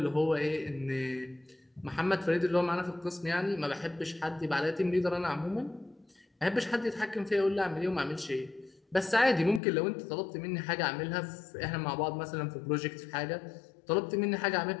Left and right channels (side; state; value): right; drops out; at 9.6 s